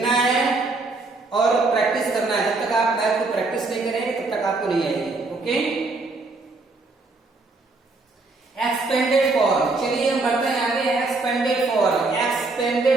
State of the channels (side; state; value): left; quieter; 3.5 dB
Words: है और प्रैक्टिस करना है, जब तक आप मैथ को प्रैक्टिस नहीं करेंगे तब तक आपको नहीं आएगी। ओके, एक्सपेंडेड फॉर्म, चलिए हम बढ़ते हैं आगे। Expanded form,